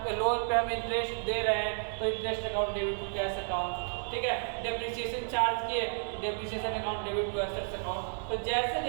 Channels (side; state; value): left; silent; digital silence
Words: लोन पे हम इंटरेस्ट दे रहे हैं तो interest account debit to cash account, ठीक है। डेप्रिसिएशन चार्ज किए depreciation account debit to assets account. तो जैसे